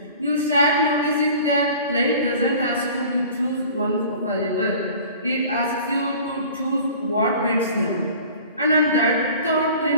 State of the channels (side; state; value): both; inverted; correlation -0.44